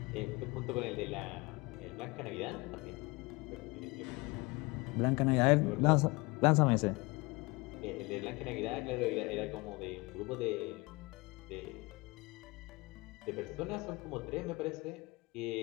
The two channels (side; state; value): right; quieter; 24.9 dB